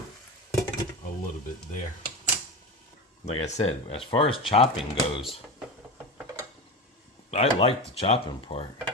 a little bit there. Like I said, as far as chopping goes, I like the chopping part.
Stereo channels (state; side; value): normal; both; correlation 0.24